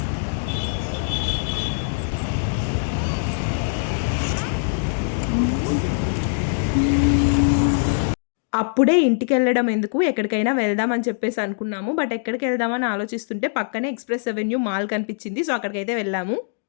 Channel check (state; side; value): silent; right; digital silence